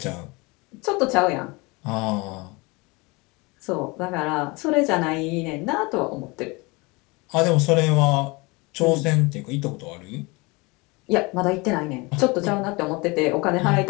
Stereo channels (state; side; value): quieter; right; 25.9 dB